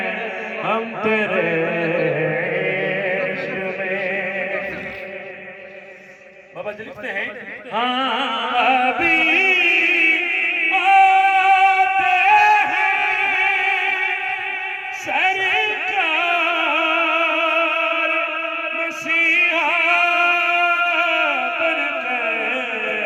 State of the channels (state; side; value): identical; both; correlation 1.00